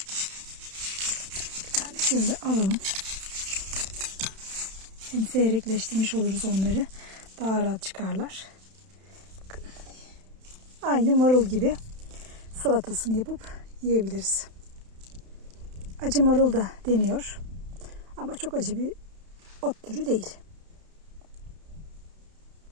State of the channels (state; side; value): late; left; 31 ms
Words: Bir tane şöyle alalım. Hem seyrekleştirmiş oluruz onları. Daha rahat çıkarlar. Bakın. Aynı marul gibi salatasını yapıp yiyebiliriz. Acı marul da deniyor. Ama çok acı bir ot türü değil.